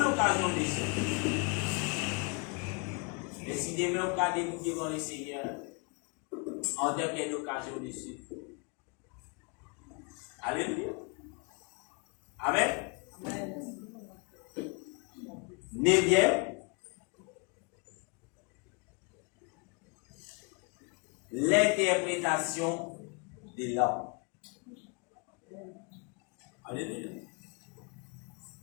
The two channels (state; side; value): quieter; right; 33.4 dB